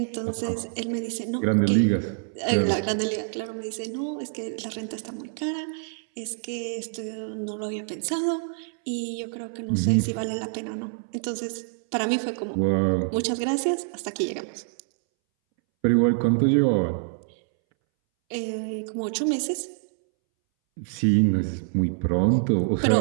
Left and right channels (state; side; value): silent; left; 61 dB below the other